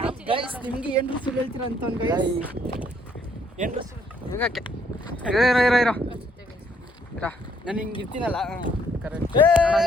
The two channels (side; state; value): both; normal; correlation 0.67